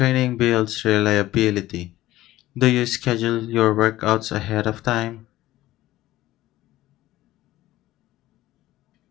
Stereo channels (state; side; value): quieter; right; 15.9 dB